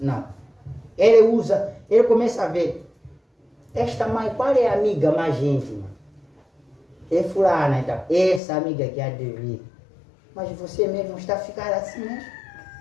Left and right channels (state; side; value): drops out; right; at 8.4 s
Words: Ele começa a ver. Esta mãe, qual é a amiga mais íntima? É fulana, então. Essa amiga que há de vir. Mas você mesmo está a ficar assim, né?